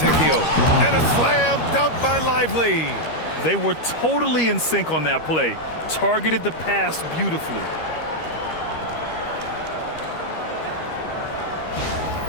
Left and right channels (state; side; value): late; right; 13 ms